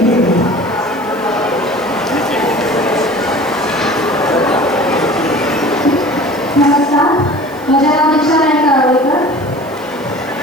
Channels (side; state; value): right; noise; hiss, 24 dB below the sound